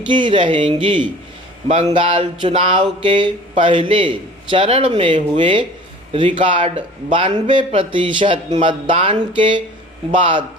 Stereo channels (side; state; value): both; normal; correlation 0.45